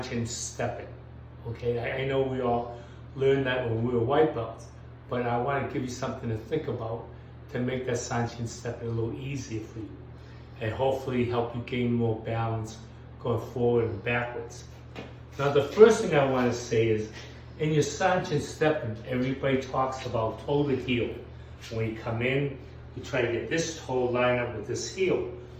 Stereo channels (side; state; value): both; identical; correlation 1.00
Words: stepping. Okay, I know we all learned that when we were white belts, but I want to give you something to think about to make that Sanchin stepping a little easier for you, and hopefully help you gain more balance going forward and backwards. Now, the first thing I want to say is, in your Sanchin stepping, everybody talks about toe to heel. When you come in, you try to get this toe lined up with this heel.